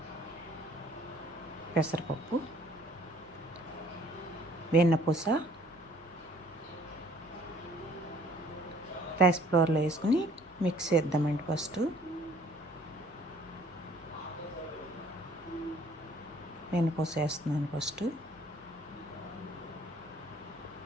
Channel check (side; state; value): right; noise; rumble, 29 dB below the sound